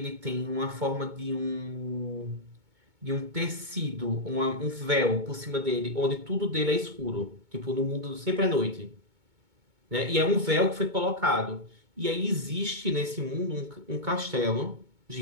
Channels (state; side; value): late; left; 2.2 ms